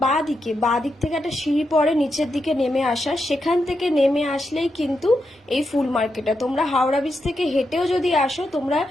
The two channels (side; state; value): both; normal; correlation 0.85